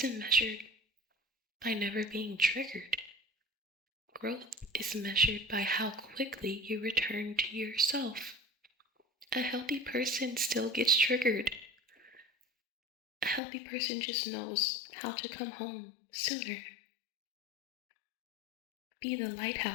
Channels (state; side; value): drops out; right; at 13.4 s